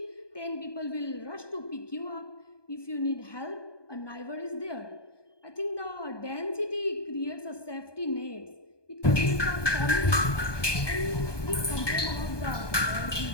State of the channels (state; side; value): late; right; 1.2 ms